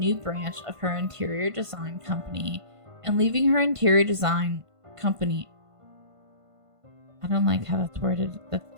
branch of her interior design company and leaving her interior design company. I don't like how that's worded. That's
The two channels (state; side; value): late; left; 1.5 ms